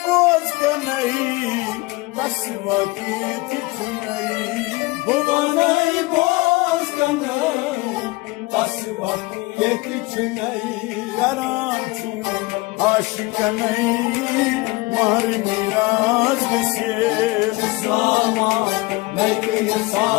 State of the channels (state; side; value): quieter; right; 22.7 dB